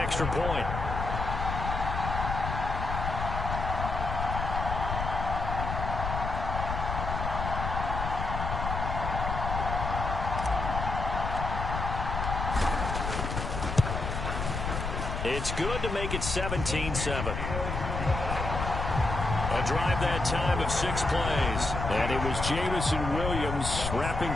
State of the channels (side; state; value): left; noise; rumble, 3 dB below the sound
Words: point. It's good to make it 17-7. A drive that time of 6 plays. And it was Jamison Williams wrapping